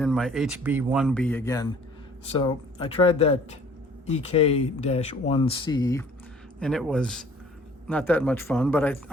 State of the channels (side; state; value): both; normal; correlation 0.53